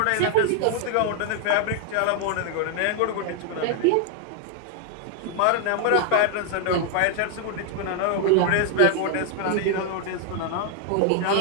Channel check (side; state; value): both; different; correlation 0.00